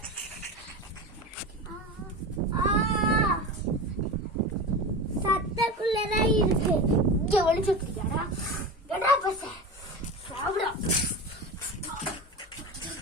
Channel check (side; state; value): both; normal; correlation 0.27